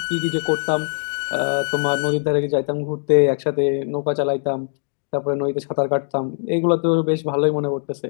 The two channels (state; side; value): silent; right; digital silence